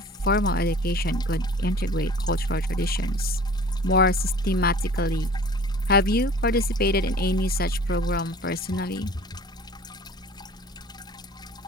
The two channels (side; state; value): both; normal; correlation 0.46